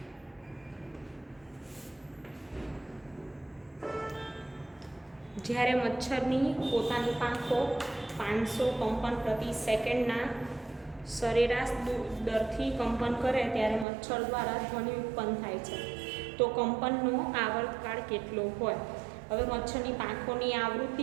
જ્યારે મચ્છરની પોતાની પાંખો 500 કંપન પ્રતિ સેકન્ડના સરેરાશ દરથી કંપન કરે ત્યારે મચ્છર દ્વારા ધ્વનિ ઉત્પન્ન થાય છે. તો કંપનનો આવર્તકાળ કેટલો હોય? હવે મચ્છરની પાંખોની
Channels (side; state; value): left; drops out; at 13.9 s